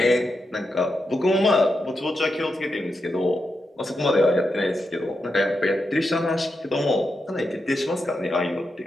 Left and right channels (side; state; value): both; normal; correlation 0.86